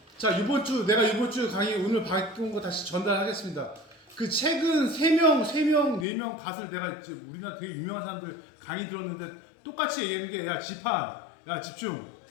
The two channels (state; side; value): drops out; right; at 6.1 s